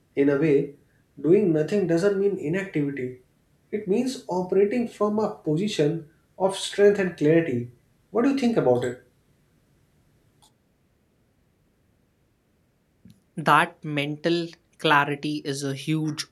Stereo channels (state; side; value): identical; both; correlation 1.00